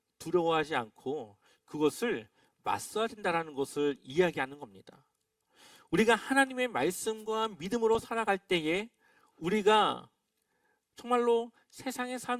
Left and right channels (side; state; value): both; identical; correlation 1.00